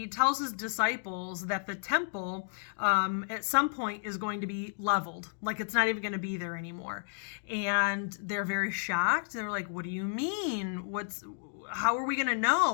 tells his disciples that the temple at some point is going to be leveled. Like it's not even going to be there anymore. And they're very shocked. They're like, what do you mean? How are we going to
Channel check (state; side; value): silent; right; digital silence